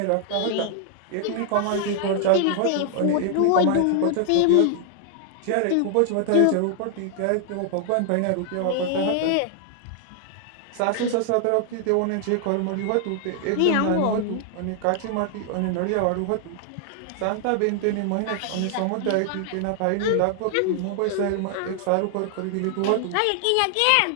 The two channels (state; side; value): different; both; correlation 0.00